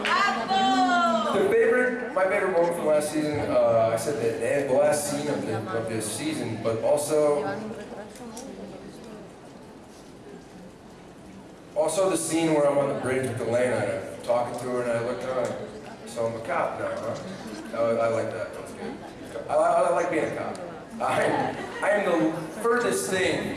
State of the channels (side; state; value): both; identical; correlation 1.00